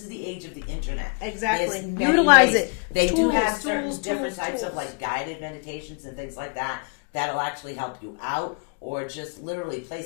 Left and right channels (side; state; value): right; quieter; 36.5 dB